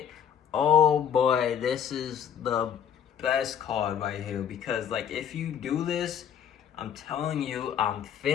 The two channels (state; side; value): quieter; right; 8.7 dB